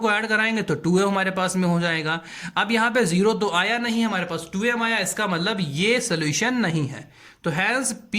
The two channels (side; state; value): both; identical; correlation 1.00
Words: ऐड कराएंगे तो 2m हमारे पास में हो जाएगा। अब यहाँ पे जीरो तो आया नहीं, हमारे पास 2m आया, इसका मतलब ये सोल्यूशन नहीं है। तो hence